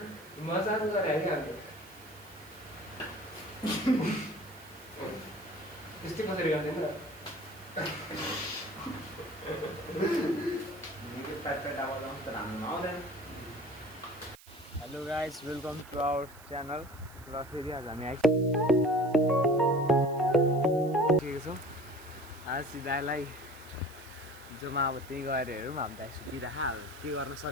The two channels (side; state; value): right; noise; hiss, 22 dB below the sound